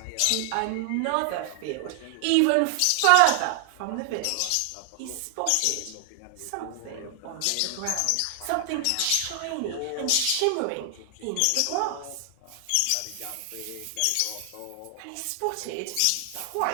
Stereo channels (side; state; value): both; different; correlation 0.00